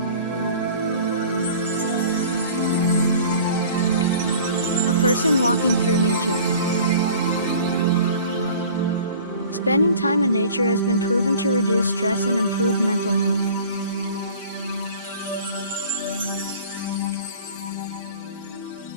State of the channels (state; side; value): inverted; both; correlation -0.45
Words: A person walking through nature. Spending time in nature has been proven to reduce stress and improve mental health.